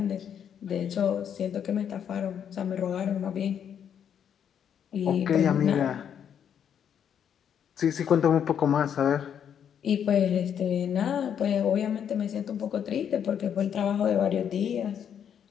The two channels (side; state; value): right; quieter; 8.6 dB